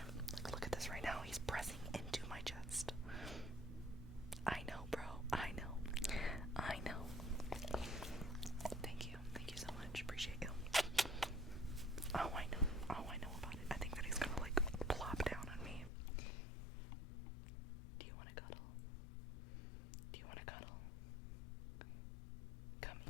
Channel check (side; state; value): right; drops out; at 15.9 s